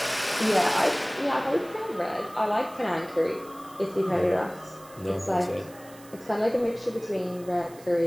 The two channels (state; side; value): noise; right; hiss, 22 dB below the sound